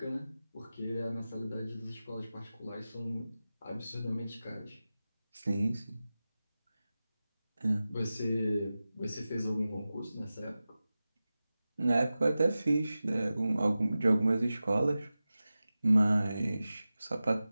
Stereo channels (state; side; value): inverted; both; correlation -0.95